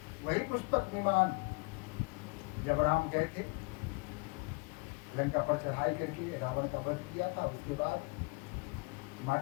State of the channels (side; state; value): right; quieter; 28.9 dB